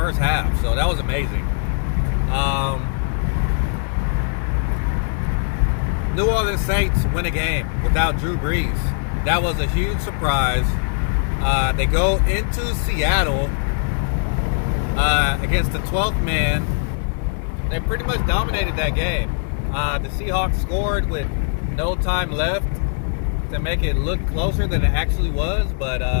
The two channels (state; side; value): silent; right; 65 dB below the other